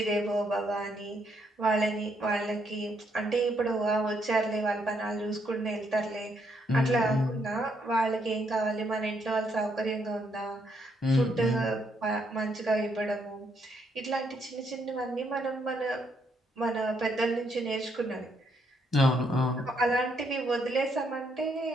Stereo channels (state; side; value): normal; both; correlation 0.74